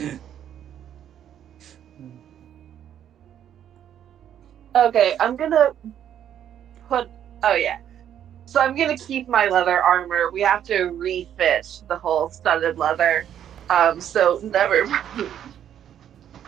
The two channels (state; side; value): quieter; left; 10.0 dB